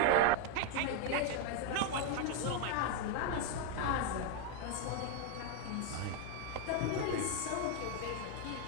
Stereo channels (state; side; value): different; both; correlation 0.01